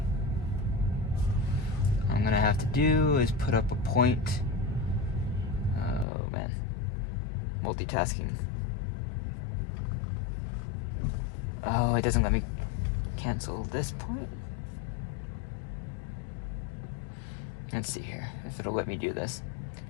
What I'm gonna have to do is put up a point. Oh man, multitasking. Oh, it doesn't let me cancel this point. Let's see here if it'll let me do this.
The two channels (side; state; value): right; drops out; at 6.1 s